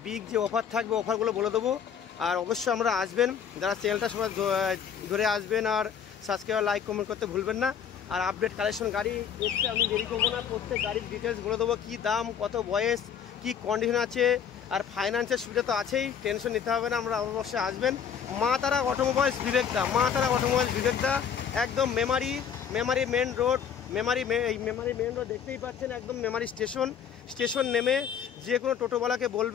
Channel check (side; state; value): right; quieter; 7.7 dB